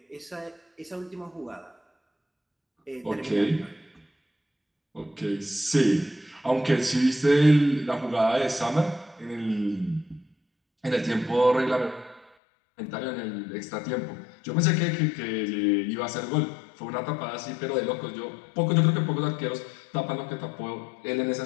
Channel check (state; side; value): drops out; right; at 12.3 s